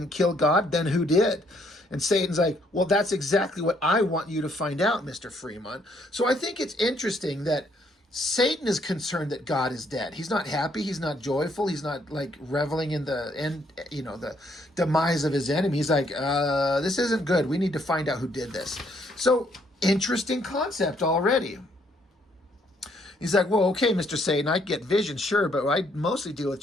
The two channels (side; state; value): both; normal; correlation 0.69